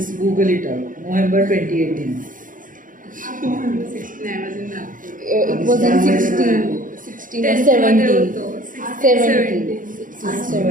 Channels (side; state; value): left; late; 0.39 ms